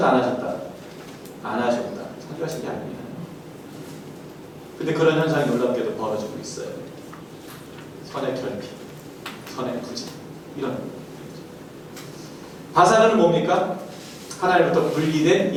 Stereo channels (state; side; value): identical; both; correlation 1.00